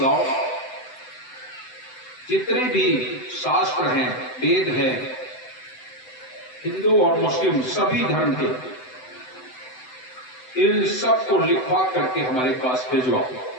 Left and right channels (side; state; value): right; late; 7.9 ms